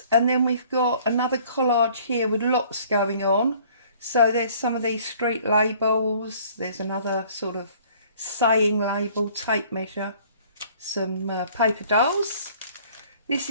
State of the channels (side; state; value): both; inverted; correlation -0.55